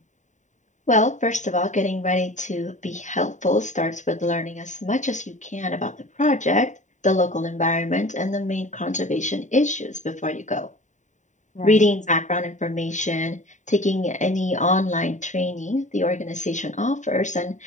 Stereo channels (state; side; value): late; right; 0.35 ms